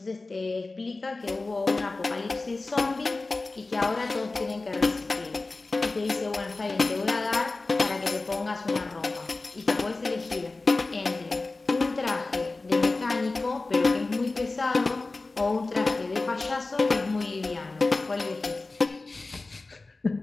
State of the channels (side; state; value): right; quieter; 3.4 dB